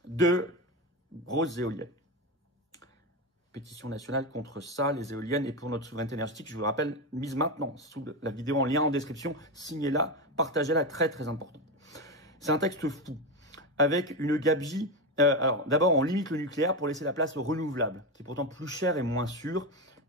de grosses éoliennes. Pétition nationale contre ça, les éoliennes, et pour notre souveraineté énergétique, je vous le rappelle, mise maintenant, sous la vidéo en lien en description, signez-la, partagez-la, très très important. C'est un texte fou, avec une gabegie. Alors d'abord, on limite le nucléaire pour laisser la place au renouvelable, qui est pourtant plus cher et moins sûr.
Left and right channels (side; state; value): both; normal; correlation 0.15